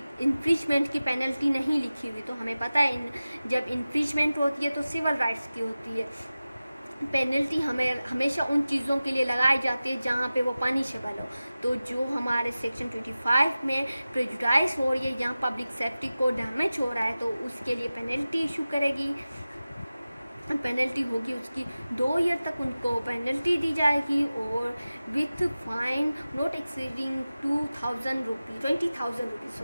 इन्फ्रिजमेंट की पेनल्टी नहीं लिखी हुई, तो हमें पता है जब इन्फ्रिजमेंट होती है तो सिविल राइट्स की होती है। पेनल्टी हमेशा उन चीज़ों के लिए लगाई जाती है जहाँ पे वो पनिशेबल हो। तो जो हमारे सेक्शन 25 में प्रेजुडाइज हो रही है, यहाँ पब्लिक सेफ्टी को डैमेज हो रहा है, तो उसके लिए पेनल्टी इशू करेगी। पेनल्टी होगी उसकी 2 ईयर तक उनको पेनल्टी दी जाएगी, और with fine not exceeding 20,000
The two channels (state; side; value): inverted; both; correlation -0.96